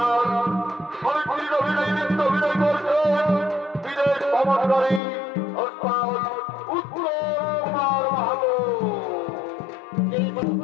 সাবিত্রীর অভিনয় নৃত্য অভিনয় করছে বিদেশ ভ্রমণকারী উত্তর কুমার মাহাতো।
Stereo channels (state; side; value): drops out; right; at 5.0 s